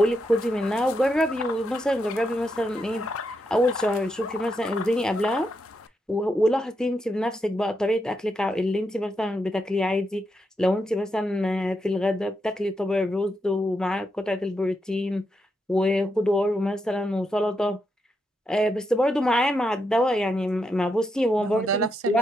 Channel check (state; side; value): normal; both; correlation 0.82